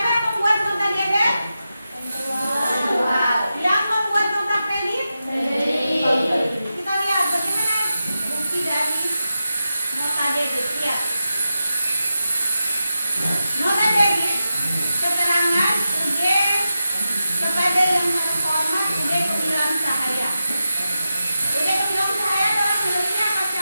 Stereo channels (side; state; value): both; inverted; correlation -0.90